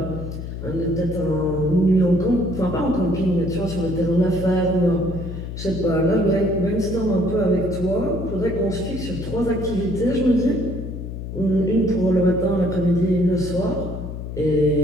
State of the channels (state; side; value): noise; left; hum, 7 dB below the sound